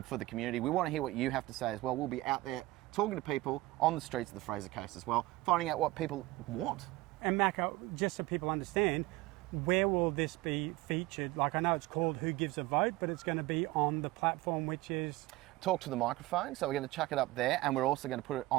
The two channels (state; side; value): quieter; left; 19.0 dB